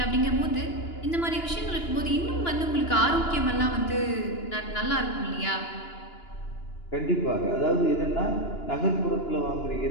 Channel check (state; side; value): late; right; 2.9 ms